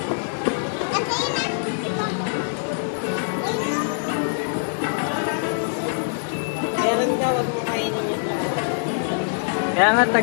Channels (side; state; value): right; silent; 63 dB below the other